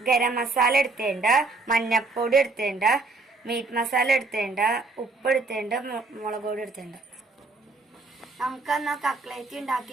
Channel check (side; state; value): left; quieter; 3.6 dB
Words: ഗരം മസാല എടുത്തേണ്ട, മഞ്ഞപ്പൊടി എടുത്തേണ്ട, മീറ്റ് മസാല എടുത്തേണ്ട, ഉപ്പ് എടുത്തേണ്ട, മുളക് പൊടി എടുത്തേണ്ട. നമുക്കെന്നാ കട്ട്ലേറ്റ്